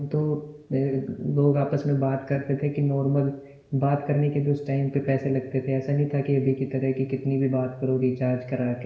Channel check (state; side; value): identical; both; correlation 1.00